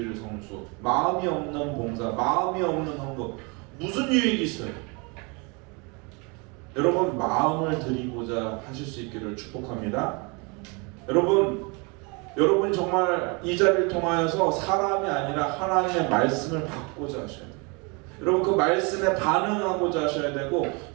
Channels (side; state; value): left; quieter; 30.5 dB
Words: 성수, 마음이 없는 봉사, 마음이 없는 헌금, 무슨 유익이 있어요? 여러분, 마음을 드리고자 하실 수 있기를 축복합니다. 여러분이 정말 이 자리를 통하여서 사람이 아니라 하나님의 말씀을 받고자 하셔야 돼요. 여러분, 그 말씀에 반응하고자 하셔야 되고